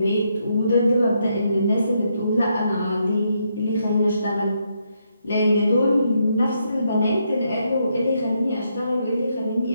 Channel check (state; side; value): inverted; both; correlation -0.78